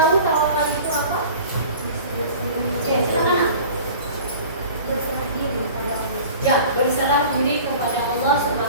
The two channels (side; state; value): both; inverted; correlation -0.42